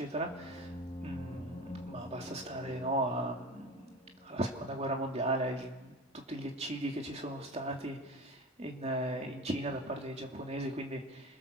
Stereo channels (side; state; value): both; normal; correlation 0.33